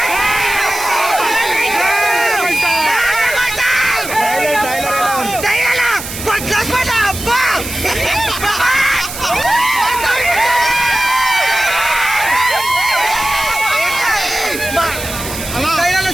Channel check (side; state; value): right; noise; hiss, 9 dB below the sound